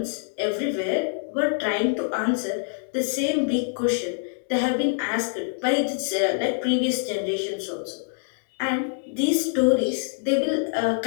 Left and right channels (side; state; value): right; silent; 60 dB below the other